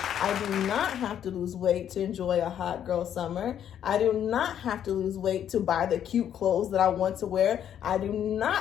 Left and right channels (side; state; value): right; quieter; 9.8 dB